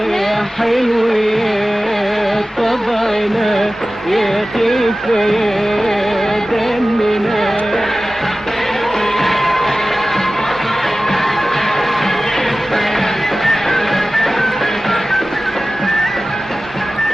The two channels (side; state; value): both; normal; correlation 0.96